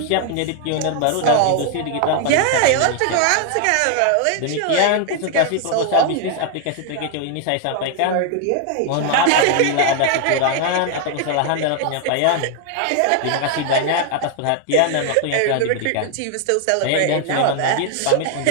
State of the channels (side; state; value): both; different; correlation 0.00